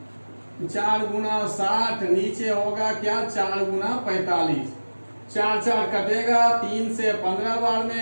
4 गुना 60 नीचे होगा क्या 4 गुना 45, 4 कटेगा, 3 से 15 बार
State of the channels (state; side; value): inverted; both; correlation -1.00